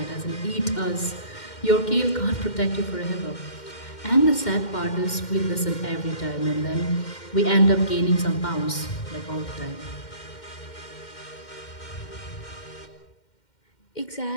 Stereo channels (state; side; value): late; right; 2.1 ms